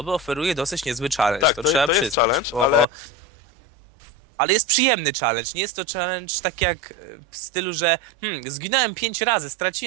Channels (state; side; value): drops out; left; at 2.9 s